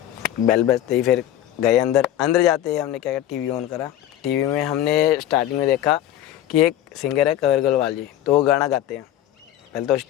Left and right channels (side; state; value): right; quieter; 12.3 dB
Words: बेल बजते ही फिर गए अंदर जाते ही हमने क्या किया, टीवी ऑन करा। टीवी में हमने स्टार्टिंग में देखा कि एक सिंगर है कंवर गोलवाल जी, तो वो गाना गाते हैं। पहले तो